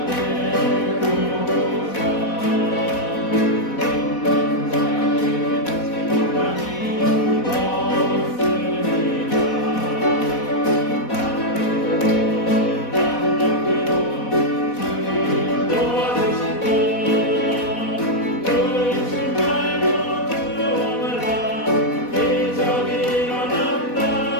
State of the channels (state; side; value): late; right; 4.1 ms